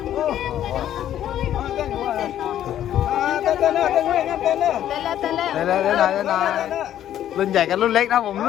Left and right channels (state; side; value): quieter; right; 11.3 dB